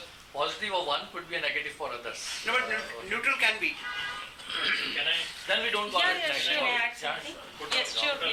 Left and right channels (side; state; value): both; identical; correlation 1.00